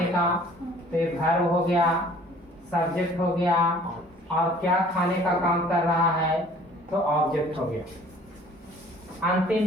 का, तो ये वर्ब हो गया, सब्जेक्ट हो गया, और क्या खाने का काम कर रहा है तो ऑब्जेक्ट हो गया। अंतिम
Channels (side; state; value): both; normal; correlation 0.53